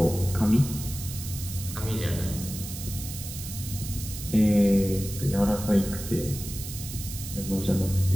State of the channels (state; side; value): noise; right; hiss, 10 dB below the sound